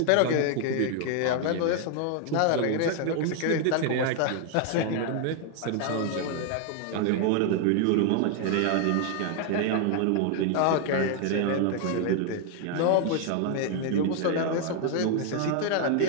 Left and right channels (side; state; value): both; different; correlation 0.00